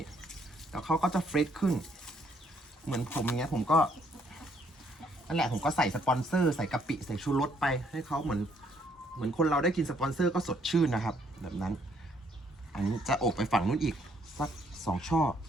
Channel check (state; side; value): normal; both; correlation 0.68